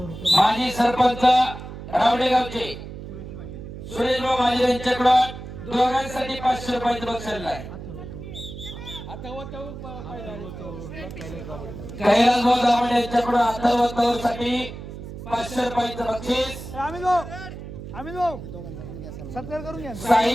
माजी सरपंच रावडेगावचे सुरेश भाऊ माझे यांच्याकडून दोघांसाठी 500 रुपयाचं बक्षीस आहे. कैलास भाऊ दामण यांच्याकडून अथर्व साठी 500 रुपयाचं बक्षीस. सत्कार करून घ्या.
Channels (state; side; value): noise; right; hum, 11 dB below the sound